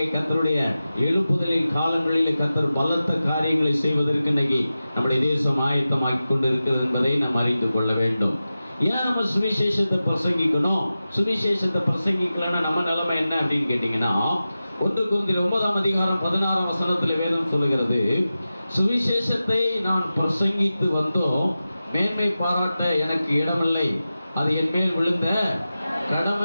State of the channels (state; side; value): inverted; both; correlation -0.94